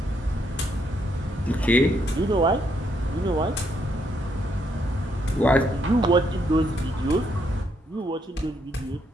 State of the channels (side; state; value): both; normal; correlation 0.75